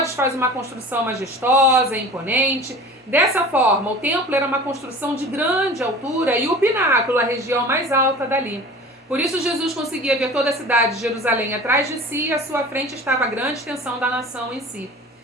faz uma construção majestosa, imponente. Dessa forma, o templo era uma construção de grande altura e o pináculo, a região mais alta dali. Por isso Jesus conseguia ver toda a cidade de Jerusalém atrás de si e à sua frente estava a grande extensão da nação em si.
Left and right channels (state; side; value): normal; both; correlation 0.40